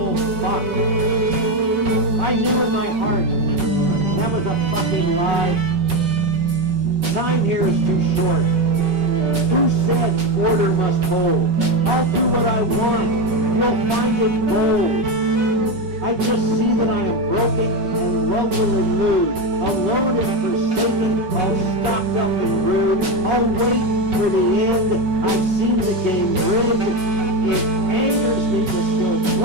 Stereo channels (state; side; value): late; left; 5.4 ms